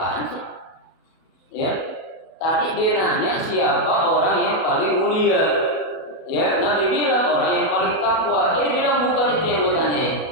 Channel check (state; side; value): late; right; 37 ms